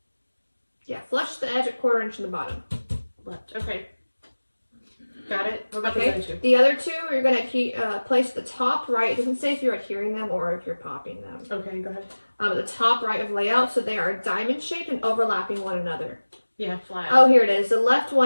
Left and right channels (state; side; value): inverted; both; correlation -1.00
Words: Yeah, flush to the edge at 1/4 inch from the bottom. Left. Okay. Got it. What about Okay. the other two? The other two, you're going to place the top right. It doesn't say if you're adhering them or if you're popping them. Okay, go ahead. The top right of layout, so they are diamond shaped and overlapping one another. Yeah, flat. Oh, here it is. The left